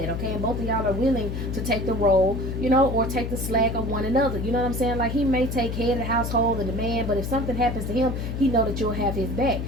okay? And both of y'all are willing to take the role, you know, or take the slack of one another. You know what I'm saying? Like, he may take head of the household and the man, but if something happens to him, he know that you'll have his back.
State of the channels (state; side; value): noise; left; hum, 4 dB below the sound